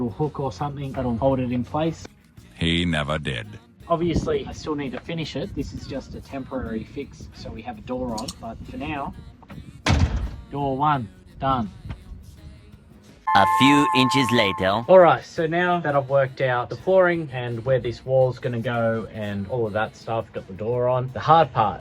hook or something that'll hold it in place. He never did. Obviously, I still need to finish it. This is just a temporary fix, so we have a door on. But for now, door one, done. A few inches later. Alright, so now that I've worked out the flooring and where this wall's going to go and all of that stuff, got the door on, the hard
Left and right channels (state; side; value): identical; both; correlation 1.00